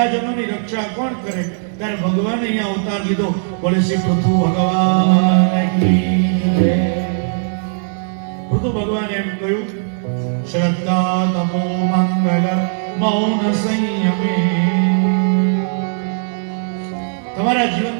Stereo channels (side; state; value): left; silent; digital silence